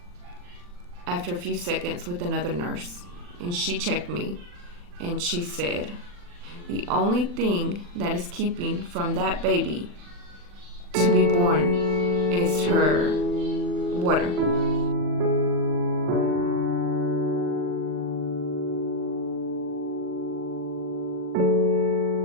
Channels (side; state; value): left; late; 40 ms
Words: after a few seconds with another nurse, and she checked me. And she said, the only thing that is keeping from that baby to be born is her water.